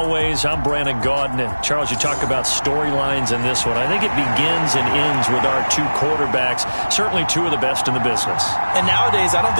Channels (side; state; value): both; inverted; correlation -1.00